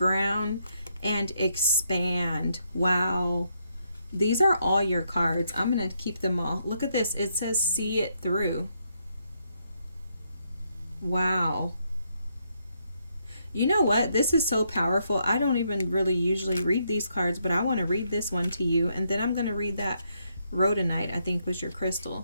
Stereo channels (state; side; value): inverted; both; correlation -0.76